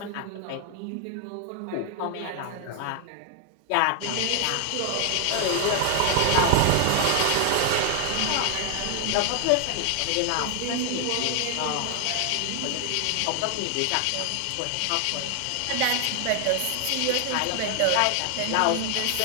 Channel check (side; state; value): both; different; correlation 0.00